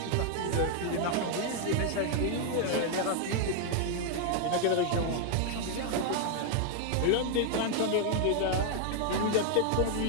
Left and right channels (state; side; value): different; both; correlation 0.00